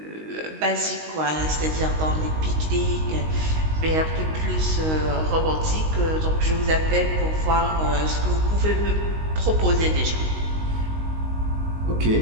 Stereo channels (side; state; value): left; late; 19 ms